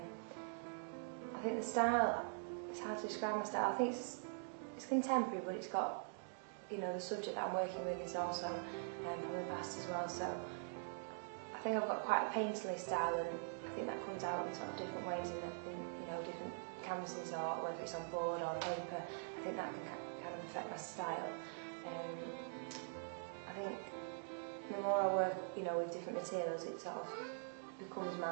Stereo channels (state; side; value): silent; left; digital silence